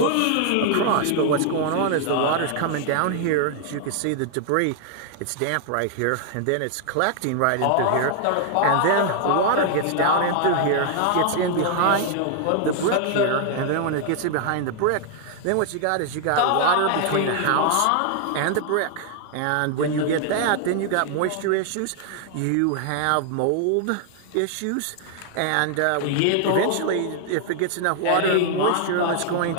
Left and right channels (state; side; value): different; both; correlation 0.00